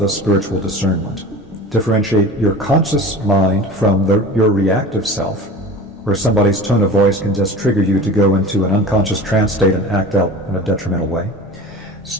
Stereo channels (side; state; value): both; normal; correlation 0.37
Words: spiritual discernment. Differentiate your conscious mind from your reactive self, where somebody's tone of voice can just trigger you to go into an unconscious trance state and act out in a detrimental way.